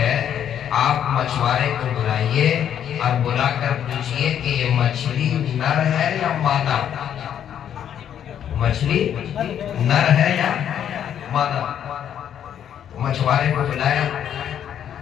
آپ مچھوارے کو بلائیے اور بلا کر پوچھئے کہ یہ مچھلی نر ہے یا مادہ؟ مچھلی نر ہے یا مادہ؟ مچھوارے کو بلایا،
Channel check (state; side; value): quieter; right; 9.5 dB